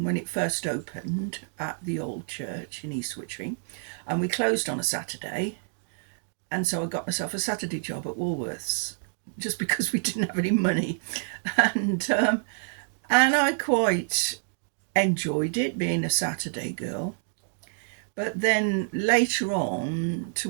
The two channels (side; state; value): left; silent; digital silence